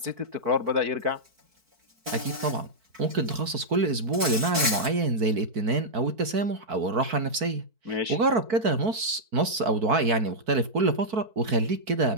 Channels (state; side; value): late; left; 4.5 ms